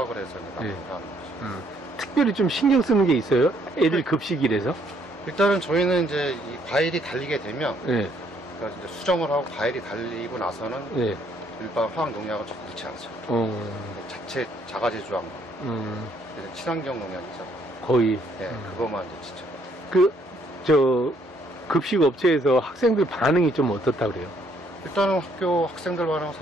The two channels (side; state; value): both; normal; correlation 0.68